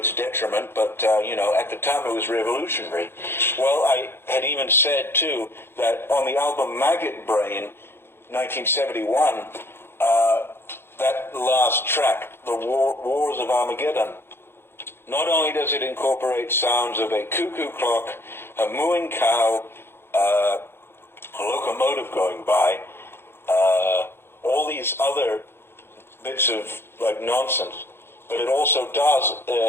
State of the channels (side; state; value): right; late; 0.11 ms